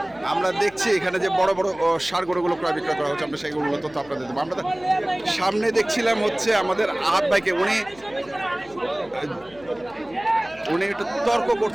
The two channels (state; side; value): noise; left; hum, 25 dB below the sound